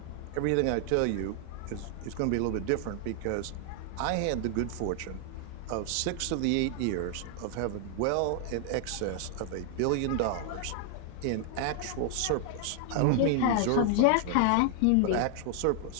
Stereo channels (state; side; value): different; both; correlation 0.00